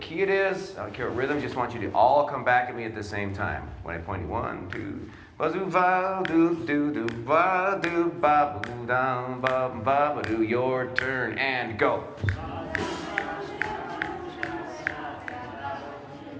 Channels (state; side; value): identical; both; correlation 1.00